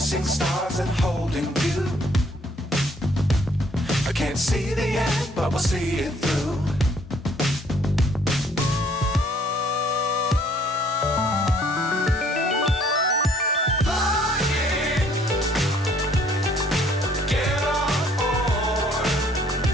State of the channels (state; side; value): normal; both; correlation 0.62